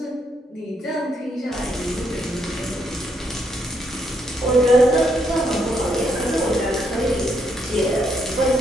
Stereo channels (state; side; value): normal; both; correlation 0.75